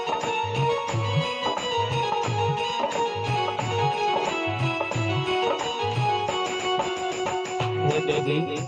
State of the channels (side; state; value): both; identical; correlation 1.00